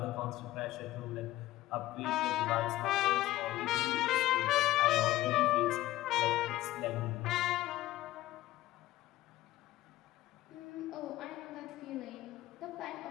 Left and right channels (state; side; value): quieter; right; 16.0 dB